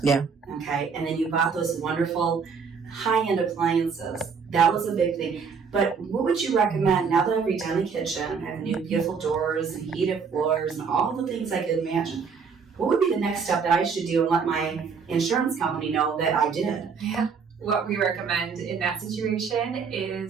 Yeah. Okay. And then you bought those wonderful high-end appliances. That was a big thing. But what would you recommend now that I've redone the kitchen, I have new beautiful doors and heated floors and all the things I could imagine? What would be the next step that I should do and let my insurance company know that I did? Yeah. What we recommend in that situation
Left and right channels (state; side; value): quieter; left; 5.8 dB